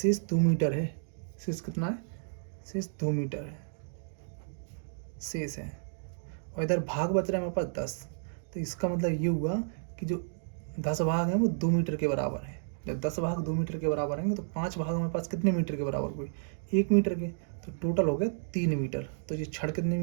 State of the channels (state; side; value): silent; left; digital silence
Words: 2 मीटर है, शेष कितना है, शेष 2 मीटर है शेष है, और इधर भाग बच रहा है हमारे पास 10, तो इसका मतलब ये हुआ कि जो 10 भाग हैं वो 2 मीटर के बराबर है। जब 10 भाग 2 मीटर के बराबर होंगे तो 5 भाग हमारे पास कितने मीटर के बराबर हुए, 1 मीटर के, तो टोटल हो गया 3 मीटर। तो ये छड़ कितने